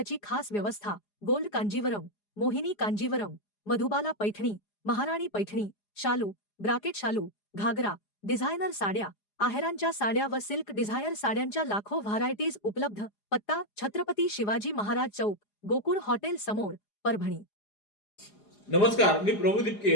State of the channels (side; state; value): right; late; 4.9 ms